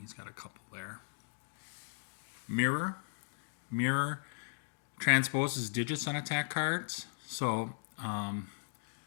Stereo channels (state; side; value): silent; right; digital silence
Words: got a couple there. Mirror. Mirror transposes digits on attack cards. So,